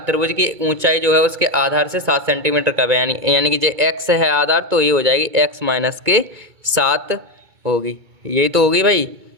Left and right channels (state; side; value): late; left; 2.3 ms